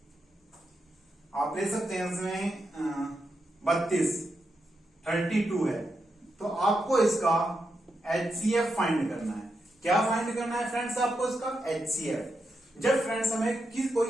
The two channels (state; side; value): normal; both; correlation 0.85